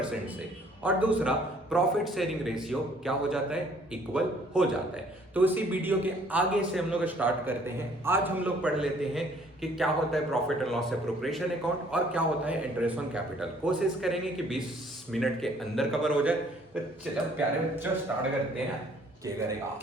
से। और दूसरा, प्रॉफिट शेयरिंग रेशियो क्या हो जाता है? इक्वल हो जाता है। तो इसी वीडियो के आगे से हम लोग स्टार्ट करते हैं। आज हम लोग पढ़ लेते हैं कि क्या होता है profit and loss appropriation account और क्या होता है इंटरेस्ट ऑन कैपिटल। कोशिश करेंगे कि 20 मिनट के अंदर कवर हो जाए। तो चलो प्यारे बच्चों, स्टार्ट करते हैं। क्या करेगा?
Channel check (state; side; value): normal; both; correlation 0.60